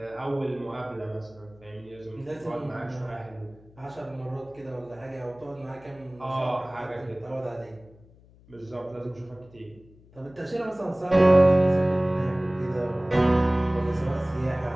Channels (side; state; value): left; noise; hum, 26 dB below the sound